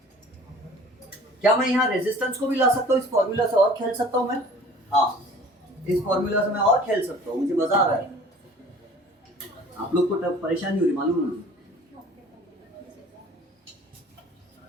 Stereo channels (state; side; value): normal; both; correlation 0.48